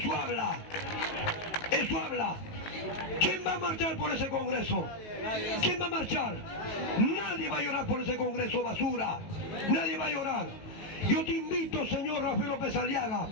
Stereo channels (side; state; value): right; late; 19 ms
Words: habla. Eso habla. ¿Quién va a marchar por ese Congreso? ¿Quién va a marchar? Nadie va a llorar por ese Congreso, basura. Nadie va a llorar. Yo te invito, señor Rafael López Aliaga,